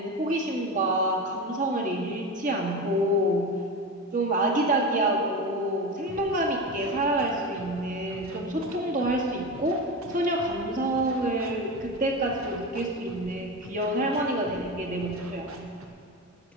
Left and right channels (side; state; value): both; normal; correlation 0.23